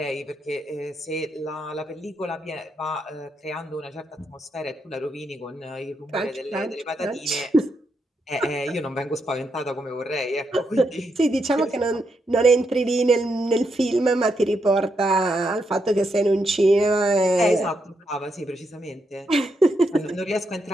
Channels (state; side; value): normal; both; correlation 0.81